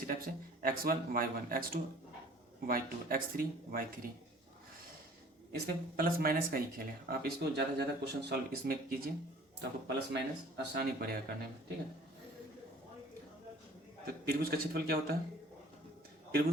टाइप से x1 y1, x2 y2, x3 y3, इसमें प्लस माइनस का ही खेल है। आप इसको ज़्यादा से ज़्यादा क्वेश्चन सॉल्व इसमें कीजिए तो आपको प्लस माइनस आसानी पड़ेगा करने में, ठीक है। तो त्रिभुज का क्षेत्रफल क्या होता है,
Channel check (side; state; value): both; normal; correlation 0.50